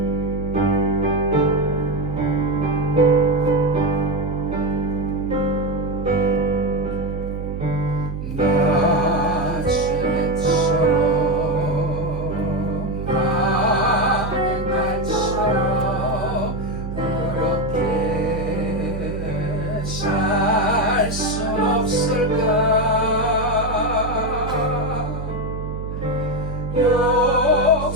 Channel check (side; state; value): right; noise; hum, 6 dB below the sound